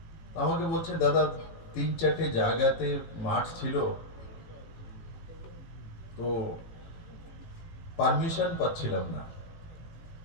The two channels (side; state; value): right; late; 18 ms